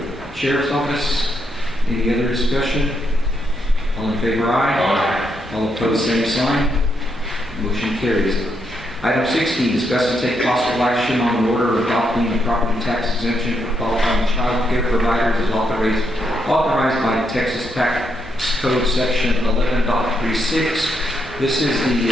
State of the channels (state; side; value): normal; both; correlation 0.79